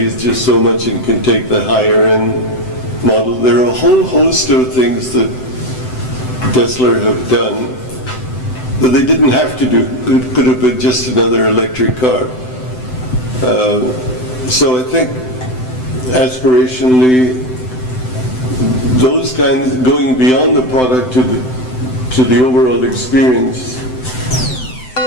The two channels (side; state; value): right; late; 7.8 ms